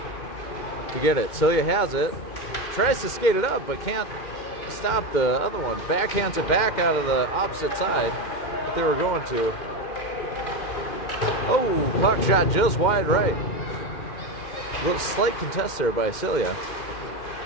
to get it. Celia has it, tries to skate it up, but can't stop the other one. Backhands it back out of the opposite side that they were going to. Oh, puck shot just wide right. A little slight contest there by Celia.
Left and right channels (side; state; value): right; late; 2.1 ms